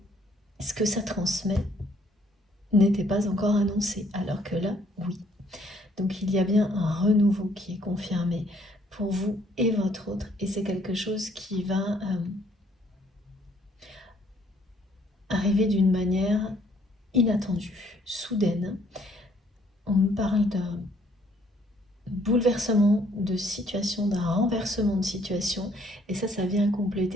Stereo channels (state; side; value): normal; both; correlation 0.65